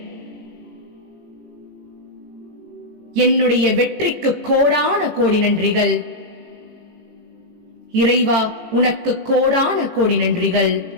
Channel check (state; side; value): late; left; 18 ms